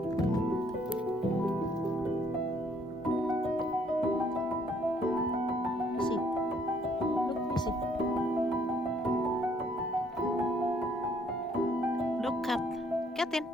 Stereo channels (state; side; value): normal; both; correlation 0.65